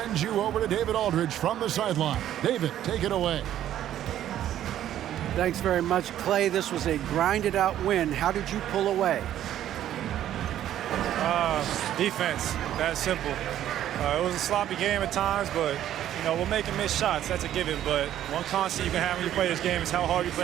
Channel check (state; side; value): quieter; left; 11.7 dB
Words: you over to David Aldridge from the sideline. David, take it away. Thanks very much, Clay. This was a grinded-out win. How did you pull away? Defense. That's simple. It was a sloppy game at times, but, you know, we're making missed shots. That's a given. But one constant you can have when you play this game is how hard you